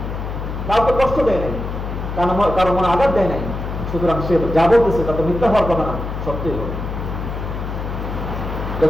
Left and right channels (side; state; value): left; noise; hum, 5 dB below the sound